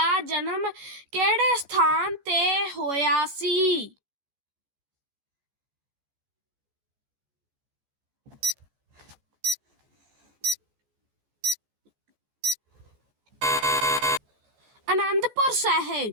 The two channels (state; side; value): late; left; 14 ms